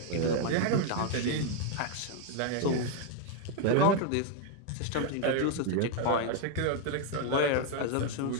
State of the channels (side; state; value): both; different; correlation 0.01